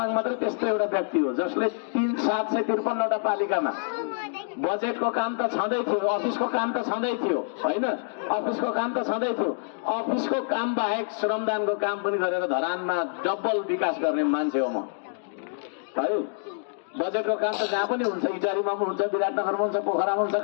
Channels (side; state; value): right; silent; digital silence